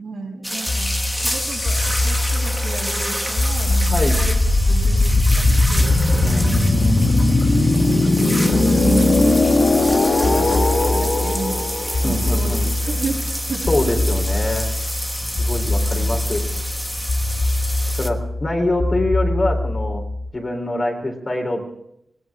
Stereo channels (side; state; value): both; normal; correlation 0.94